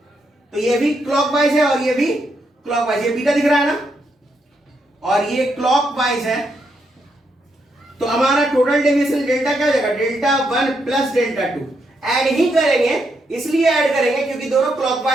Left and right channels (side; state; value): both; normal; correlation 0.79